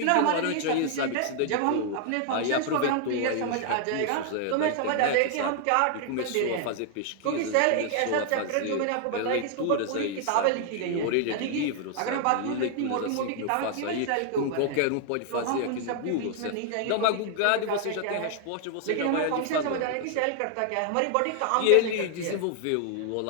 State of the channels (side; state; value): both; different; correlation 0.00